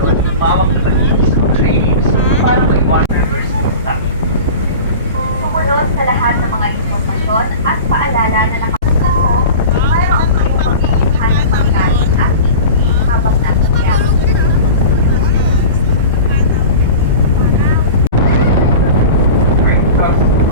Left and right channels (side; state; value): both; inverted; correlation -0.34